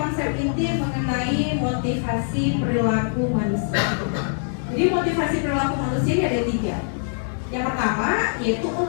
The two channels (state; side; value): silent; right; digital silence